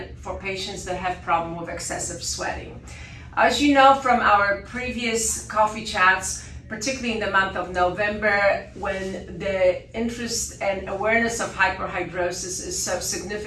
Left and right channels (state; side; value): identical; both; correlation 1.00